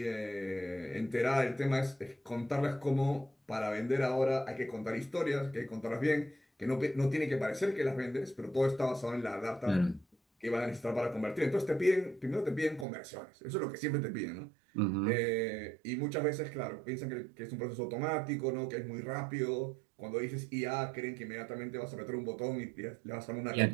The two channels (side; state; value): left; drops out; at 12.9 s